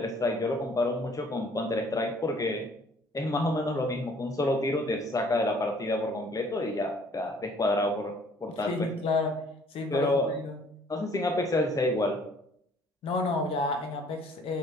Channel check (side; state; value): both; normal; correlation 0.58